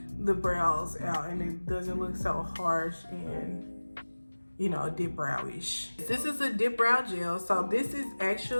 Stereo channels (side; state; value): both; inverted; correlation -1.00